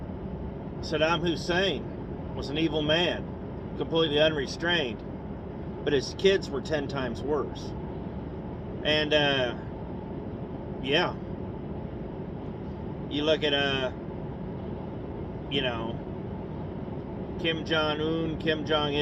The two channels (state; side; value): identical; both; correlation 1.00